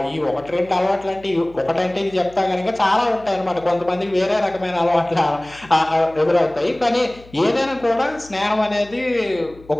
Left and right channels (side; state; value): left; noise; hum, 23 dB below the sound